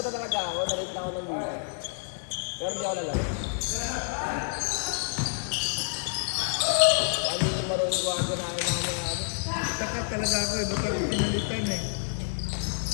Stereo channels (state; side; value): silent; right; 59 dB below the other